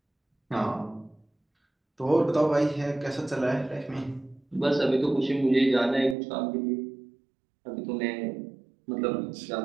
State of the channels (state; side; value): drops out; left; at 6.2 s